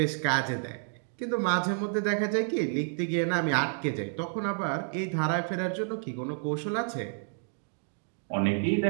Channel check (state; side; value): silent; left; 58 dB below the other